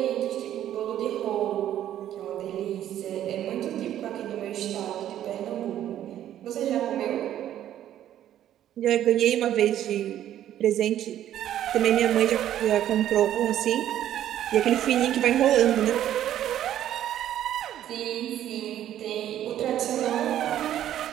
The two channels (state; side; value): quieter; left; 11.6 dB